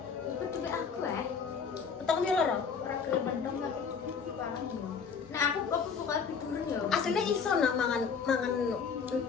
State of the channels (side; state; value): right; quieter; 6.1 dB